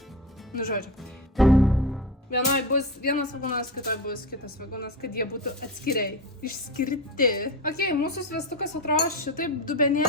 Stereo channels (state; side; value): normal; both; correlation 0.24